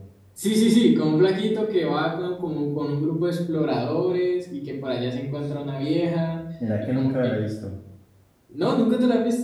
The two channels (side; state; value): both; identical; correlation 1.00